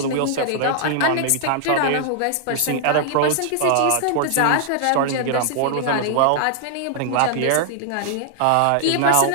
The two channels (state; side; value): different; both; correlation -0.01